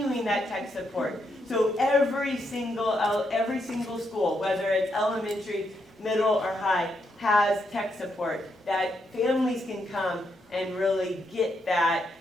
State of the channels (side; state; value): both; normal; correlation 0.79